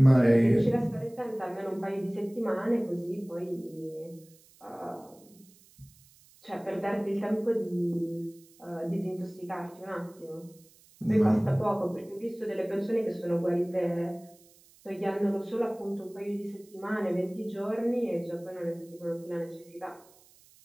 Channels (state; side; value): noise; right; hiss, 27 dB below the sound